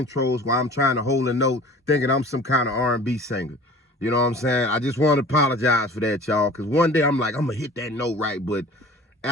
while I'm trying to hold a note thinking I'm some kind of R&B singer. You know what I'm saying? I just want to apologize for that, y'all, because one day I'm like, I'm going to hit that note right, but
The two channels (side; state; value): both; normal; correlation 0.44